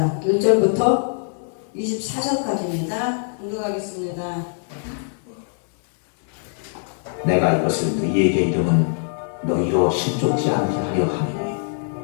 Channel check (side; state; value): right; silent; 64 dB below the other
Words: 1절부터 24절까지입니다. 공독하겠습니다. 내가 이것을 너희에게 이름은 너희로 실족지 않게 하려 함이니